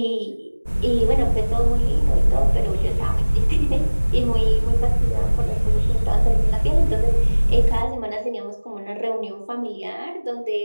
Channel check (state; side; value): inverted; both; correlation -1.00